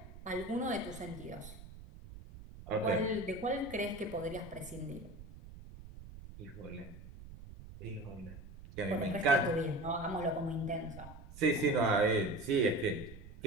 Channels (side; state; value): right; noise; rumble, 15 dB below the sound